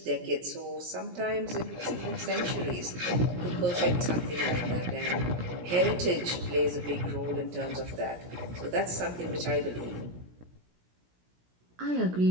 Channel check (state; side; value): late; left; 17 ms